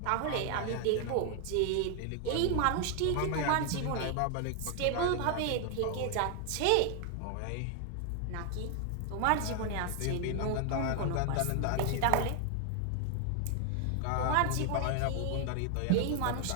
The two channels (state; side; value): different; both; correlation 0.00